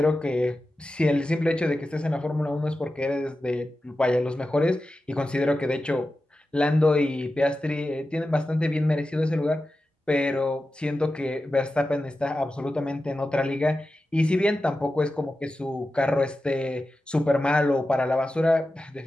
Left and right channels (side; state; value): both; normal; correlation 0.93